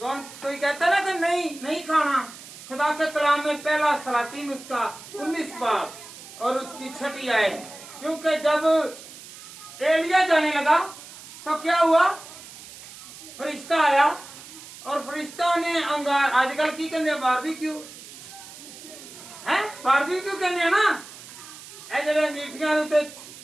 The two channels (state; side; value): noise; right; hiss, 16 dB below the sound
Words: कौन कोई कहता ना कि नहीं खाना। खुदा के कलाम में पहला सलातीन उसका 19 बाब और उसकी 6ठी आयत। क्योंकि जब एलिया जाने लगा तो क्या हुआ? फरिश्ता आया और फरिश्ता ने अंगार, आजकल की कहते बारबेक्यू है, बारबेक्यू कहते ना, जरा मीठियां उत्ते